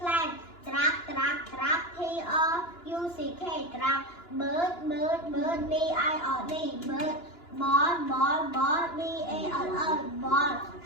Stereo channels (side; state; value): right; late; 2.9 ms